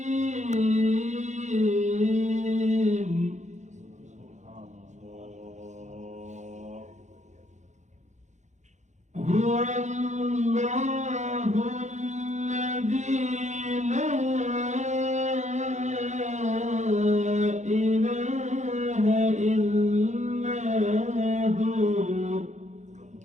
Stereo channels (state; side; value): late; left; 0.34 ms